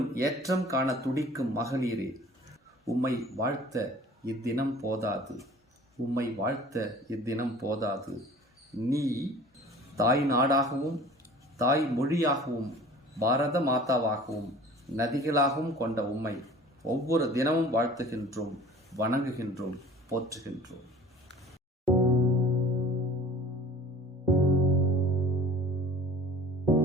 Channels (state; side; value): normal; both; correlation 0.45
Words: ஏற்றம் காண துடிக்கும் மகளிரே, உம்மை வாழ்த்த இத்தினம் போதாது. நீ தாய் நாடாகவும் தாய் மொழியாகவும் பாரத மாதாவாகவும் நதிகளாகவும் கொண்ட உம்மை ஒவ்வொரு தினமும் வாழ்த்துகின்றோம், வணங்குகின்றோம், போற்றுகின்றோம்.